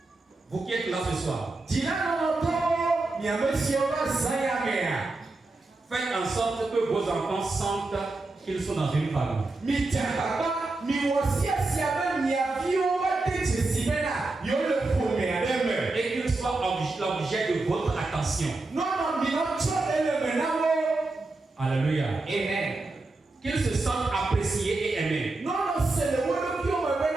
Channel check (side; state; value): left; quieter; 3.2 dB